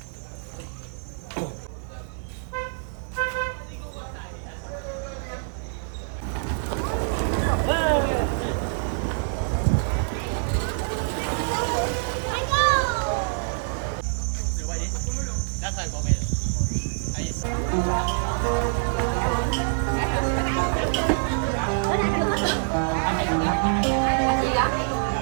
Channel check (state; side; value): silent; left; digital silence